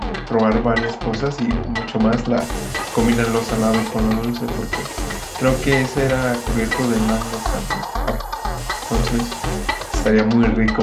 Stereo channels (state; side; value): identical; both; correlation 1.00